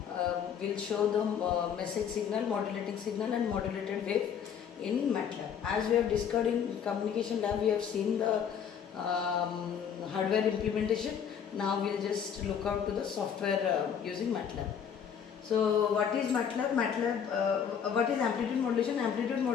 We'll show the message signal, modulating signal and modulated wave in Matlab. As we have discussed in communication lab, we have seen the hardware implementation. Now we'll just look out to the software using Matlab. So what is Matlab? What is amplitude modulation? Amplitude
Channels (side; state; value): right; quieter; 7.9 dB